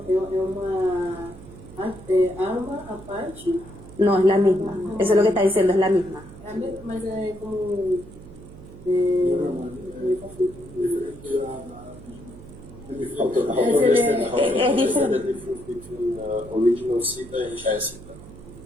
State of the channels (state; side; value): noise; right; hum, 17 dB below the sound